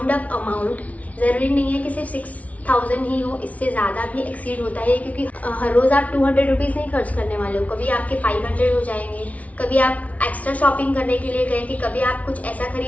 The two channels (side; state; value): right; late; 0.068 ms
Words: अप अमाउंट, जरूरी नहीं है कि सिर्फ 6000 ही हो, इससे ज्यादा भी एक्सीड होता है क्योंकि हर रोज आप 200 रुपीज नहीं खर्च करने वाले हो। कभी आपके 500 हो जाएंगे, कभी आप एक्स्ट्रा शॉपिंग करने के लिए गए, कि कभी आप कुछ ऐसा